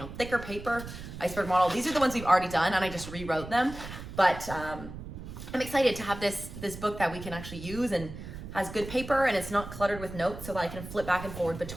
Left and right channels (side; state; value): right; noise; rumble, 11 dB below the sound